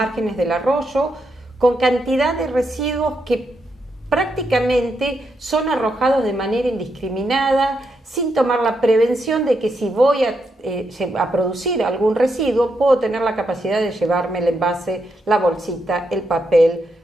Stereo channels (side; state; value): both; normal; correlation 0.81